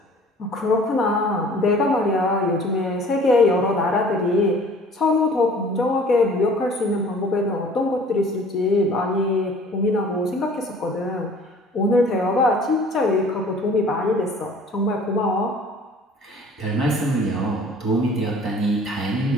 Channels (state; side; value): normal; both; correlation 0.50